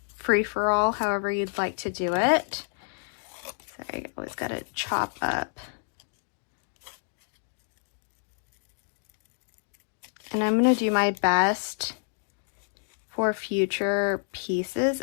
free-for-all, however you'd like to do it. Sorry, I always got to chop up. And I'm going to do my best for future pieces,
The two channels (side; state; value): right; silent; digital silence